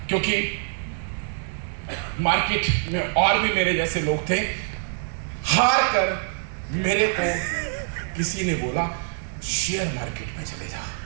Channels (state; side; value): silent; left; 62 dB below the other